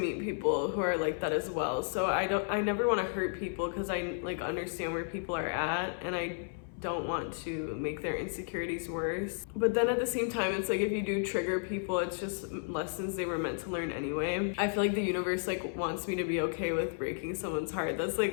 people who are like that as well. So I never want to hurt people, because I like understand where people are at, and I don't want to make their insecurities worse. But then at the same time, it's like if you do trigger people, it's just lessons they were meant to learn anyway. I feel like the universe like wants me to be okay with breaking someone's heart. That's like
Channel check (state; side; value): silent; right; 56 dB below the other